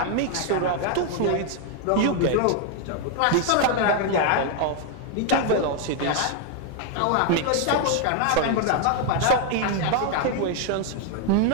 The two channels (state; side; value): different; both; correlation 0.00